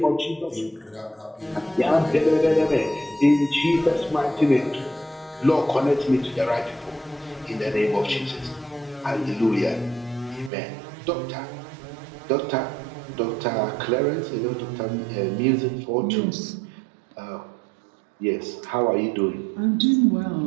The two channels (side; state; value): left; drops out; at 10.5 s